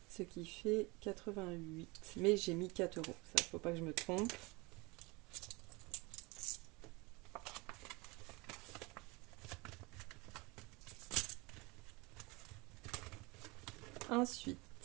Ce qui fait 88. Mais j'ai mis 4 €. Ça, faut pas que je me trompe. Ensuite,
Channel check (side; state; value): left; quieter; 25.7 dB